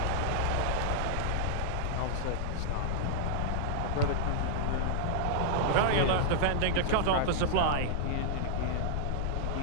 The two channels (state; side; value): different; both; correlation -0.01